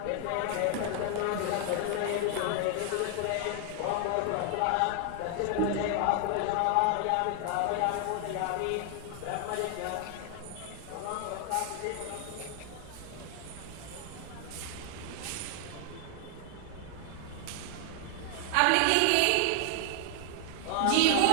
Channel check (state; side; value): different; both; correlation 0.00